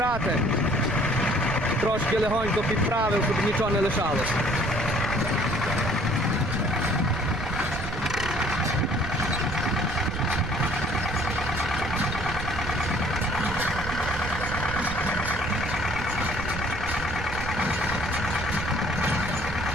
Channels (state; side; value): noise; right; rumble, 6 dB below the sound